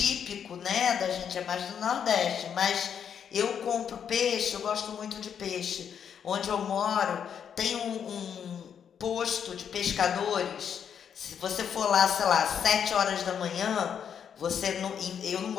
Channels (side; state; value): right; quieter; 8.0 dB